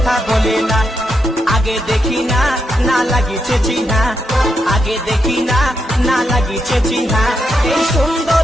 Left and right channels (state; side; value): normal; both; correlation 0.82